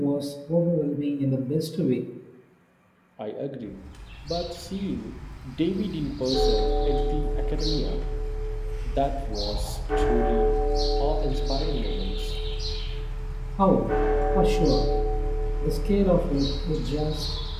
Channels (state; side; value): identical; both; correlation 1.00